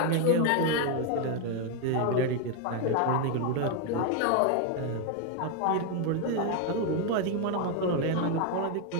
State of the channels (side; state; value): both; different; correlation 0.01